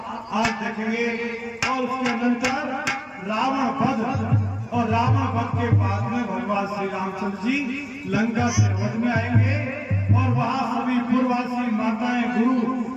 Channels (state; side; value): identical; both; correlation 1.00